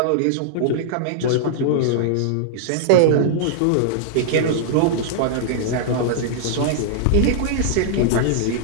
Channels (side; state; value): both; different; correlation -0.01